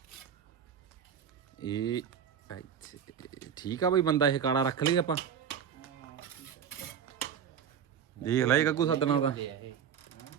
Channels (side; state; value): left; quieter; 8.0 dB